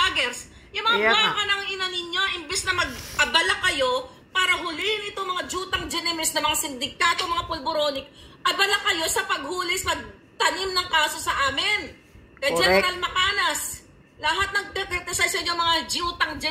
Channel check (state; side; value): identical; both; correlation 1.00